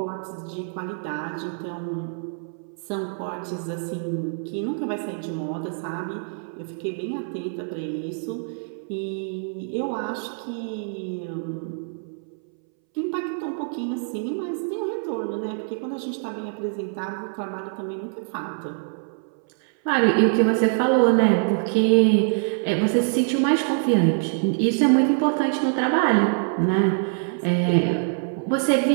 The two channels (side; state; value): left; silent; 62 dB below the other